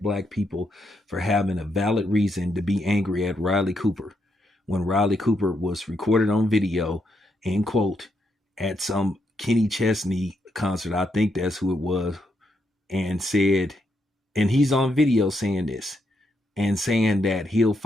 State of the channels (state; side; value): normal; both; correlation 0.79